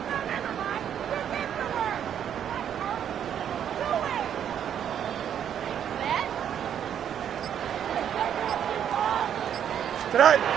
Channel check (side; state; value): left; quieter; 9.3 dB